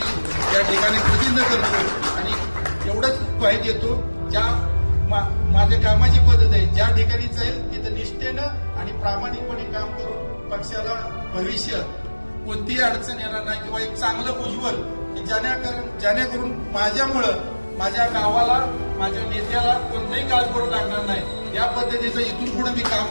या ठिकाणी प्रतिनिधित्व करतो आणि एवढंच ग्वाही देतो, ज्या माझ्या कामाची पद्धत आहे, ज्या ठिकाणी जाईल तिथं निष्ठेनं आणि प्रामाणिकपणे काम करून पक्षाला भविष्य कोणतीही अडचण येणार नाही किंवा एक चांगलं उज्ज्वल जेणेकरून माझ्यामुळं माझ्या गावाला, माझ्या नेत्याला कोणताही काळ करू लागणार नाही, या पद्धतीचं इथून पुढे मी काम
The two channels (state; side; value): inverted; both; correlation -1.00